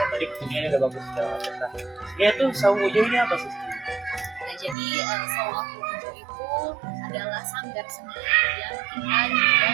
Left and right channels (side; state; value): left; drops out; at 4.8 s